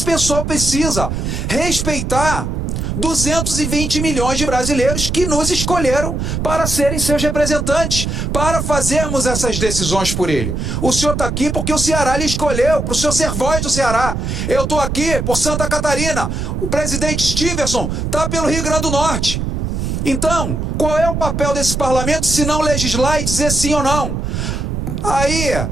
pessoal precisa respeitar 220 milhões de brasileiros que nos escolheram para serem seus representantes, para fazermos essas decisões por ele. O senhor está aqui porque o Ceará lhe escolheu, para o senhor ser voz do Ceará. Eu estou aqui por Santa Catarina. O presidente Stevenson está pelo Rio Grande do Norte. Então, qual é o papel desse parlamento se não legislar e dizer sim ou não? Aí,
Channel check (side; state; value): right; noise; rumble, 2 dB below the sound